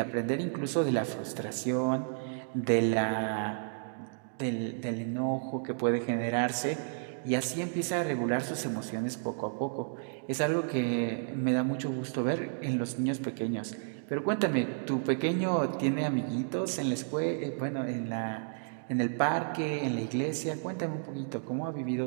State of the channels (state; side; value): silent; left; digital silence